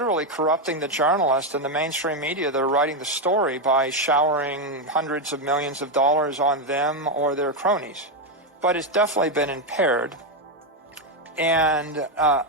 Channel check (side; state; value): both; normal; correlation 0.05